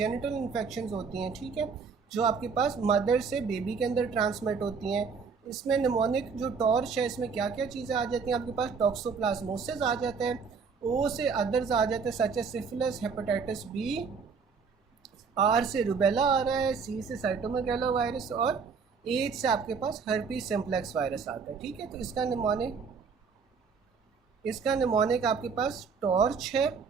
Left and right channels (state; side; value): quieter; left; 5.5 dB